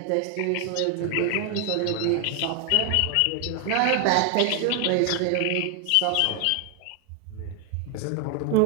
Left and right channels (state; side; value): different; both; correlation 0.00